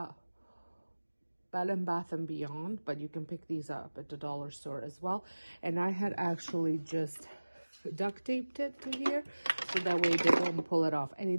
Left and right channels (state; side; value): inverted; both; correlation -1.00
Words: and Bath and Beyond, but you can pick these up at the dollar store as well. And I had actually just duct taped it to here, so that way they don't pull it off, and